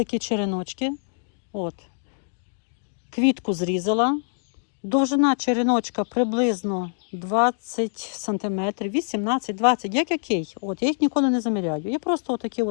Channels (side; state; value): right; silent; digital silence